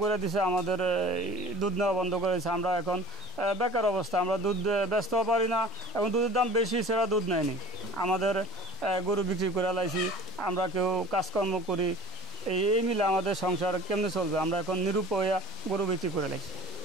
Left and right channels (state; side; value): normal; both; correlation 0.44